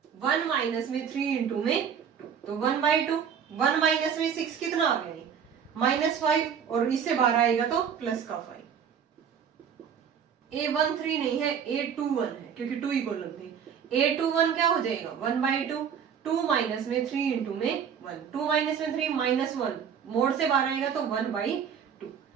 1 माइनस में 3 इंटू में 2, तो 1 बाई 2 1 माइनस में 6 कितना आ गया -5 और इससे बाहर आएगा तो प्लस का 5। A13 नहीं है A21 है क्योंकि 2 ही कॉलम थी, A21 क्या हो जाएगा 1 बाई 2 2 माइनस में 3 इंटू में 1, 2 माइनस में 3 -1 मोड से बाहर आएगा तो 1 बाई 2।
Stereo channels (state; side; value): quieter; left; 7.6 dB